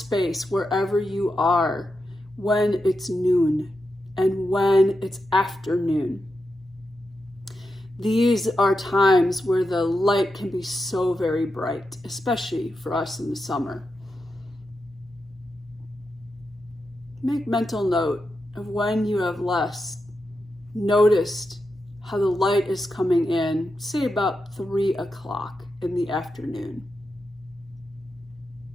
wherever you are, when it's noon and when it's afternoon. These are times where the light can be so very bright, especially for us in the summer. Make mental note of when you have last noticed how the light is coming in, say about 3 o'clock in the afternoon.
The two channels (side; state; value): both; normal; correlation 0.88